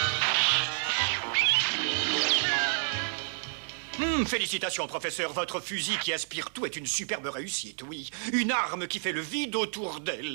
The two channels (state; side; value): silent; left; digital silence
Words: Félicitations, professeur. Votre fusil qui aspire tout est une superbe réussite, oui. Une arme qui fait le vide autour